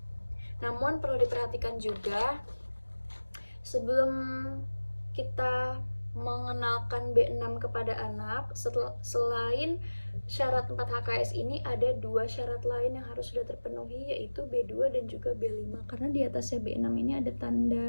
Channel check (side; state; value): both; inverted; correlation -1.00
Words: Namun perlu diperhatikan juga, sebelum kita mengenalkan B6 kepada anak, selain syarat 4 HKS ini ada 2 syarat lain yang harus sudah terpenuhi, yaitu B2 dan juga B5. Karena di atasnya B6 ini ada